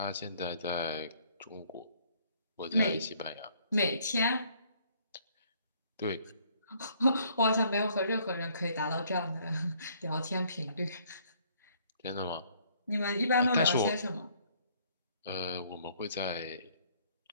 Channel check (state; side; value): inverted; both; correlation -0.63